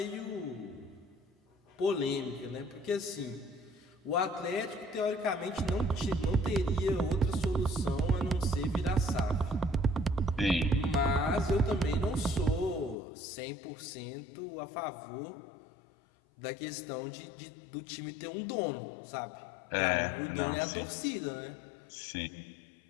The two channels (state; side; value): drops out; right; at 13.0 s